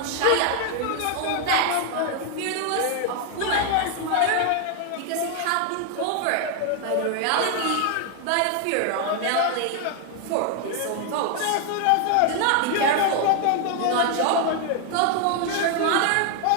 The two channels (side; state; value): both; different; correlation 0.00